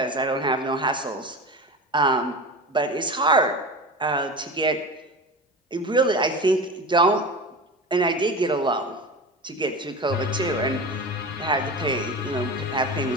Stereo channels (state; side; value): normal; both; correlation 0.29